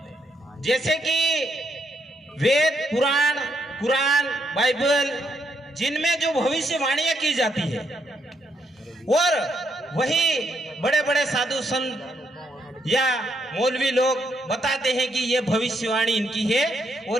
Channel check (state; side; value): normal; both; correlation 0.76